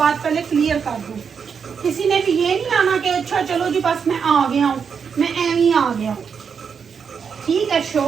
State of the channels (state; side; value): quieter; left; 6.4 dB